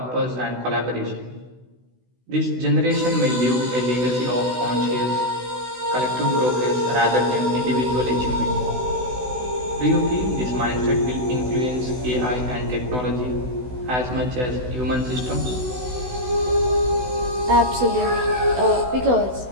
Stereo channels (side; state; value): left; late; 16 ms